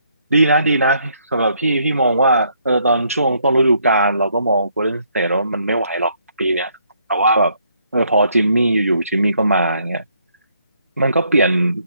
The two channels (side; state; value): both; inverted; correlation -0.70